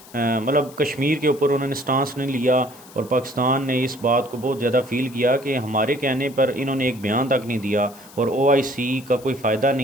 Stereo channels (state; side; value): noise; left; hiss, 21 dB below the sound